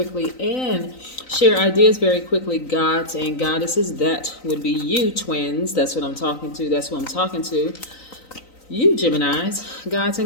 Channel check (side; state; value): right; late; 3.9 ms